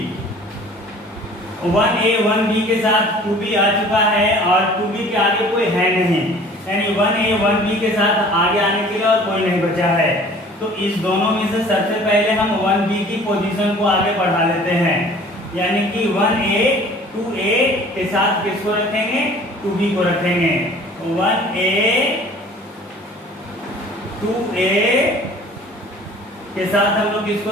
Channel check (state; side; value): normal; both; correlation 0.49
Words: 1A 1B के साथ 2B आ चुका है और 2B के आगे कोई है नहीं, यानी 1A 1B के साथ आगे आने के लिए और कोई नहीं बचा है। तो इस दोनों में से सबसे पहले हम 1B की पोजीशन को आगे बढ़ा लेते हैं, यानी कि 1A 2A के साथ किसको रखेंगे? 2B को रखेंगे। 1A 2A के साथ हम लोग किसको